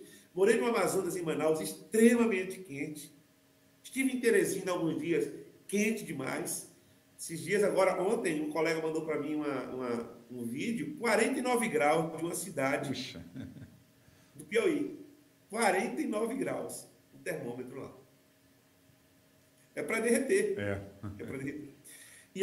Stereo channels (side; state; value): both; identical; correlation 1.00